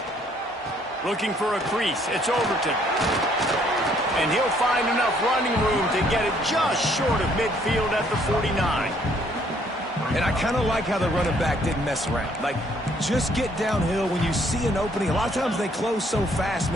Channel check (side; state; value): both; normal; correlation 0.65